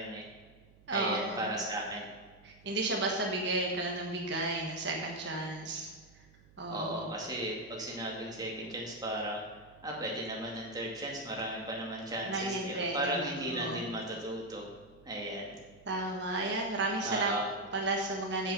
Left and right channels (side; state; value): right; noise; hum, 25 dB below the sound